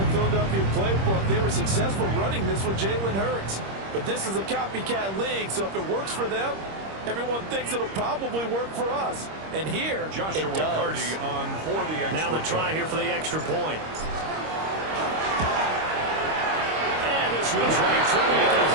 the Philadelphia playbook. They were successful running this with Jalen Hurts. But this is a copycat league, so if it works for them, everyone thinks it'll probably work for us. And here, Joshua it does. Carty on for the extra Now the try here for the extra point. And this one's right through, making a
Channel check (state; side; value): late; left; 26 ms